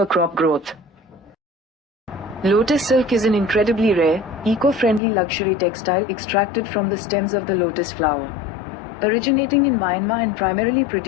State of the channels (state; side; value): drops out; right; at 5.0 s